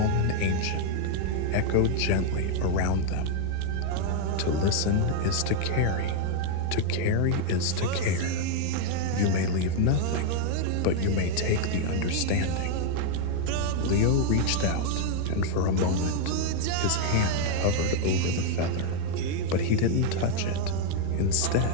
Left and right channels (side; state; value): both; different; correlation 0.01